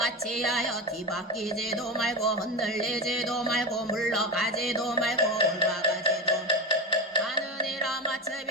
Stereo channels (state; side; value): normal; both; correlation 0.20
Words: 하여 뒤바뀌지도 말고 흔들리지도 말고 물러가지도 말고 올라가지도 하느니라